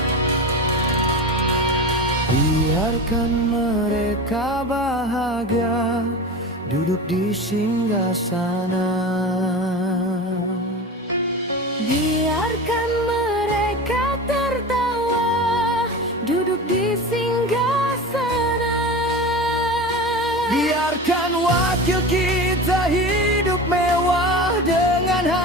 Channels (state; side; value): normal; both; correlation 0.29